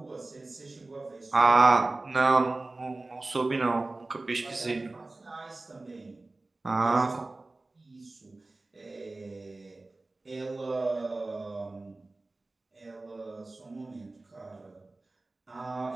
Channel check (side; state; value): left; quieter; 3.1 dB